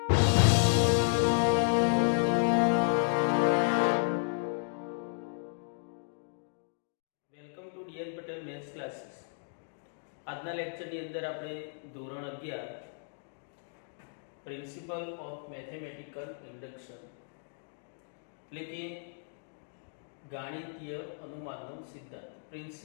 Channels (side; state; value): right; silent; digital silence